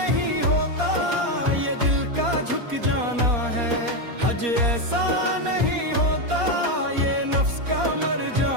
होता ये दिल का झुक जाना है, हज ऐसा नहीं होता ये नफ्स का मर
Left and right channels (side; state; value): left; late; 4.2 ms